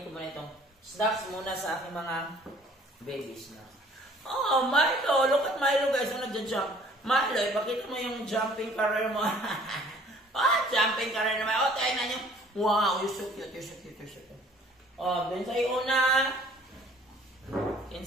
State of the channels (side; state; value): both; normal; correlation 0.55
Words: ko muna itong snacks muna sa aking mga babies na. Oh, Milo! Look at Milo guys, ang nagja-jump. Milo, ipakita mo yung jumping career mo. Jumping career naman. Tingnan nyo. Wow, you're so cute, you're so cute, you're so cute. Then sa una.